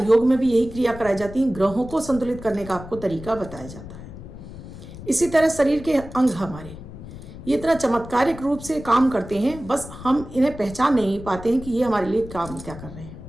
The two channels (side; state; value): left; noise; rumble, 14 dB below the sound